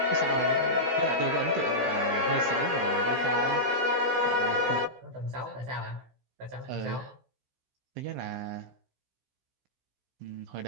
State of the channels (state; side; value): late; left; 16 ms